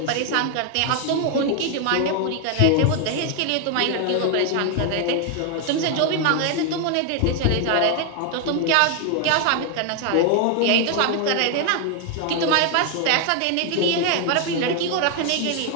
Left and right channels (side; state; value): both; different; correlation 0.01